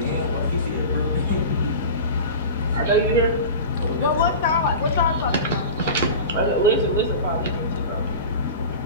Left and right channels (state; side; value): inverted; both; correlation -0.32